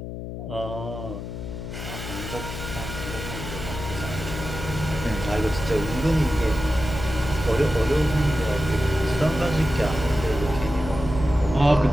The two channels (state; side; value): noise; left; hum, 8 dB below the sound